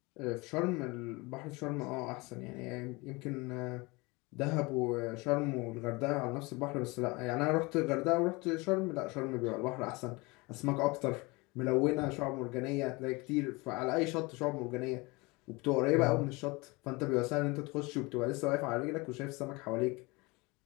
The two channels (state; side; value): quieter; right; 25.1 dB